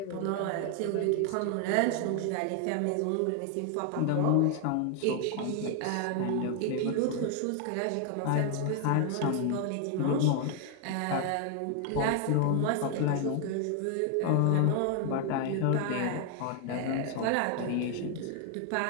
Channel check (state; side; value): different; both; correlation 0.00